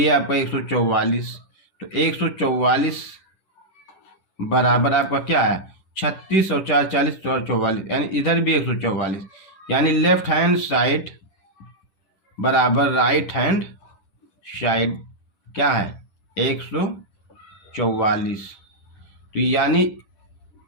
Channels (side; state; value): right; late; 10 ms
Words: आपका 144, तो 144 बराबर आपका क्या है 36 और 4 40 और 44, यानी इधर भी 144, यानी लेफ्ट हैंड साइड बराबर राइट हैंड साइड क्या है 144। तो यानी